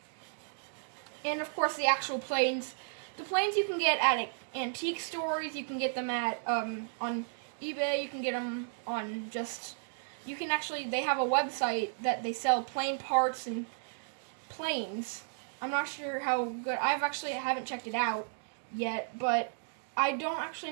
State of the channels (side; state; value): left; silent; digital silence